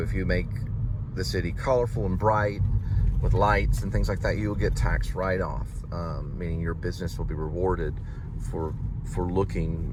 if you make the city colorful and bright with lights and things like that, you will get tax write-off, meaning your business will be rewarded for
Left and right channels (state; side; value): identical; both; correlation 1.00